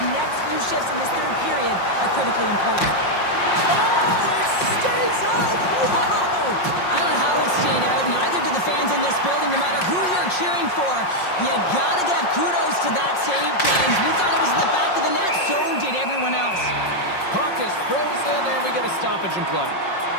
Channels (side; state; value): right; late; 5.6 ms